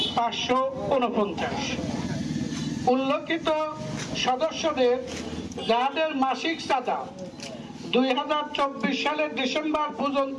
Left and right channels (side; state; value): both; identical; correlation 1.00